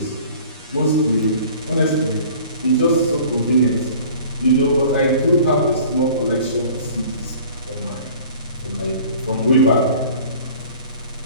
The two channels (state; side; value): inverted; both; correlation -0.47